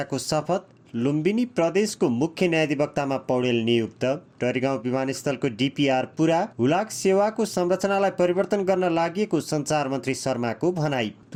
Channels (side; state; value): both; identical; correlation 1.00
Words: शपथ। लुम्बिनी प्रदेशको मुख्य न्यायाधिवक्तामा पौडेल नियुक्त। टरीगाउँ विमानस्थलको डिपिआर पुरा। हुलाक सेवाको संरचनालाई परिवर्तन गर्न लागि सञ्चार मन्त्री शर्माको भनाई।